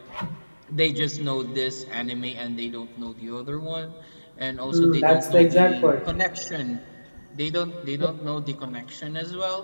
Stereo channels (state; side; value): inverted; both; correlation -1.00